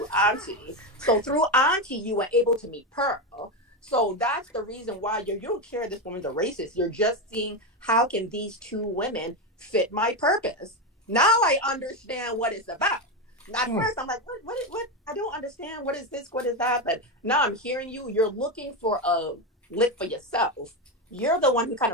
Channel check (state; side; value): normal; both; correlation 0.12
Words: Aunty. So through Aunty, you were able to meet Pearl. So that's the reason why you don't care this woman's a racist. You're just seeing how can these two women fit my purpose. Now I understand what it's about. At first, I'm like, what? I don't understand. What is this? What is that? But now I'm hearing you. You're looking for a lick for yourself. You're the one who kind